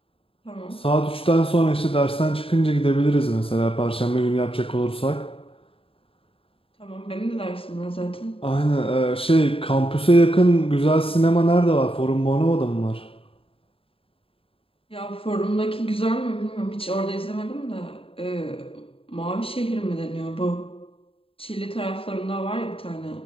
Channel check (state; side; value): late; right; 0.27 ms